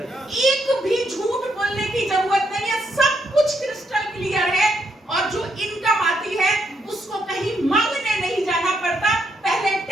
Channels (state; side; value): normal; both; correlation 0.76